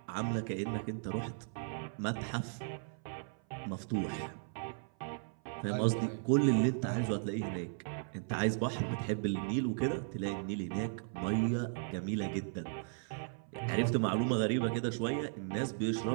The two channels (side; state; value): left; silent; 54 dB below the other